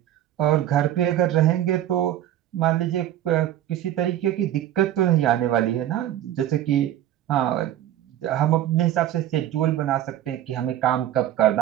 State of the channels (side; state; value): left; quieter; 12.3 dB